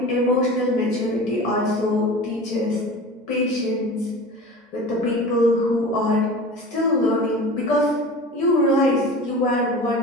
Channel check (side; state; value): both; normal; correlation 0.35